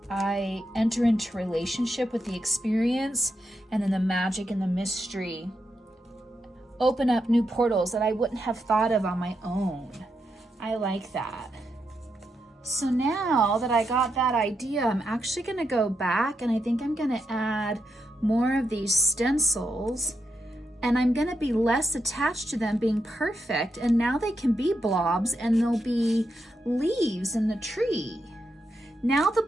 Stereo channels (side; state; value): both; normal; correlation 0.83